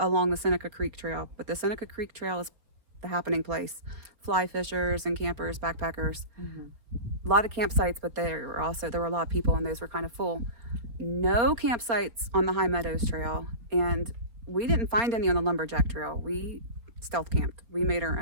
the Seneca Creek Trail. But the Seneca Creek Trail is the happening place. Fly fishers and campers, backpackers. A lot of campsites, but there were a lot of people, and those were kind of full. No campsites on the High Meadows Trail, and we didn't find any on the Lumberjack Trail. We stealth camped. We made our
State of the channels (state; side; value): late; left; 4.4 ms